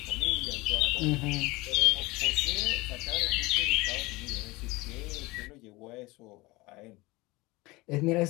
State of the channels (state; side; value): quieter; right; 22.2 dB